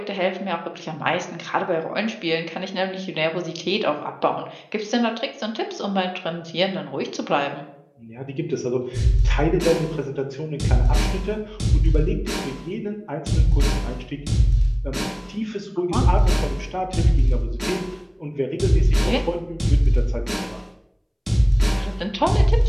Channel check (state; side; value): identical; both; correlation 1.00